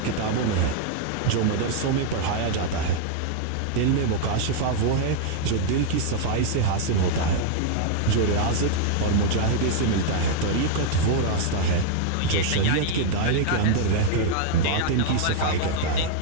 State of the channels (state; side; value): different; both; correlation -0.01